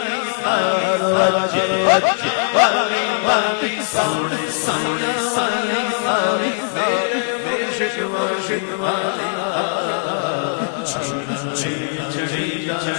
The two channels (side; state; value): right; silent; digital silence